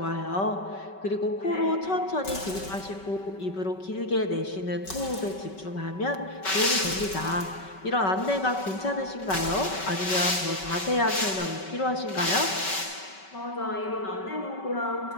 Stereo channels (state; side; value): late; right; 5.3 ms